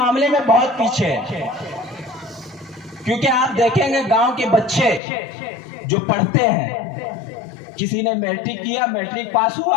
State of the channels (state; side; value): drops out; right; at 5.0 s